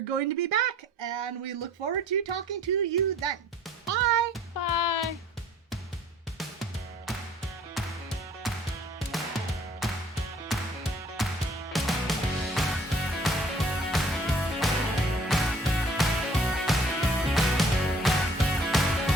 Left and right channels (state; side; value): normal; both; correlation 0.55